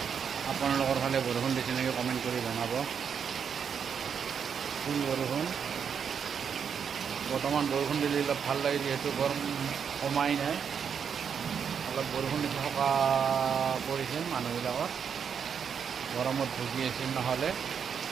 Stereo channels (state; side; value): quieter; left; 7.2 dB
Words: আপোনালোকৰ ফালে বৰষুণ দিছে নেকি কমেণ্ট কৰি জনাব। ফুল বৰষুণ। বৰ্তমান বৰষুণ দিলে অলপ ভাল লাগে, যিহেতু গৰম কমাই নাই। অলপ বৰষুণ দিছে, সকাহ পৰিছিল মানুহবিলাকৰ, গৰমত ভুগি আছিল। নহ'লে